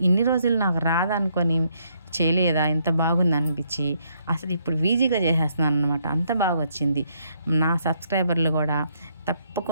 ఇన్ని రోజులు నాకు రాదనుకొని చేయలేదా, ఇంత బాగుంది అనిపించి అసలు ఇప్పుడు ఈజీగా చేసేస్తున్నాను అనమాట. అంత బాగా వచ్చింది. నా సబ్స్క్రైబర్లు కూడా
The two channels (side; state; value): both; inverted; correlation -0.72